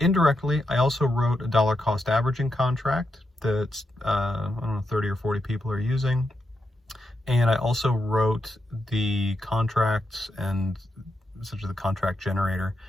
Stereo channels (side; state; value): both; normal; correlation 0.84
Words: Indirectly, I also wrote a dollar cost averaging contract that, I don't know, 30 or 40 people are using. And I also wrote the contracts and essentially the contract generator